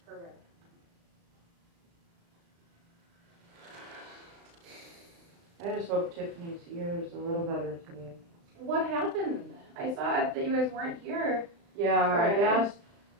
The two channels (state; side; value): late; left; 35 ms